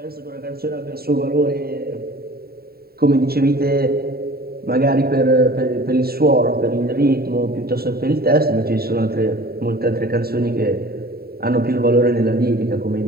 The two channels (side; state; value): left; late; 0.45 ms